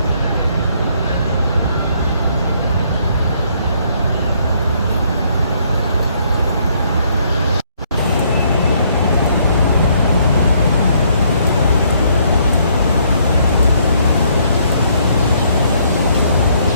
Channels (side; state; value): both; inverted; correlation -0.68